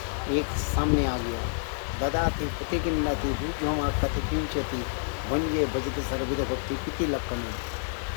एक सामने आ गया। ददाति पुति किन्नति भूजोमा कति किंचति वंजे भजते सर्वविध भक्ति किति लक्षण।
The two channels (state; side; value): silent; right; digital silence